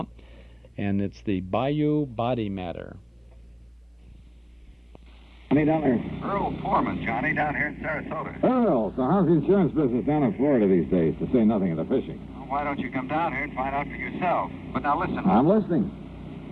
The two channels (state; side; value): identical; both; correlation 1.00